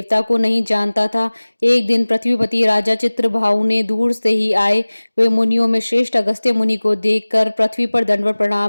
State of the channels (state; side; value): inverted; both; correlation -1.00